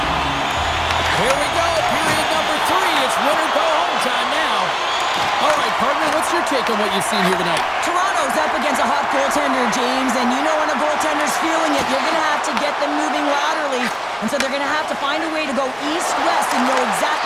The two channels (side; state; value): both; identical; correlation 1.00